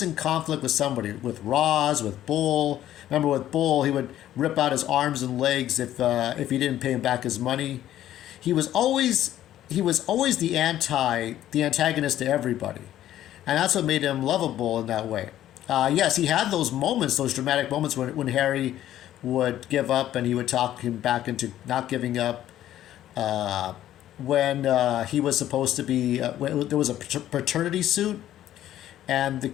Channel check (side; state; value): right; quieter; 12.5 dB